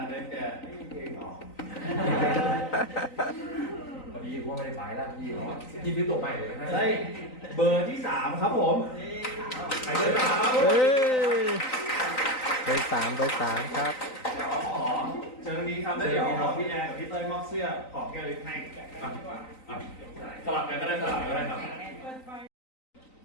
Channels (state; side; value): late; right; 3.9 ms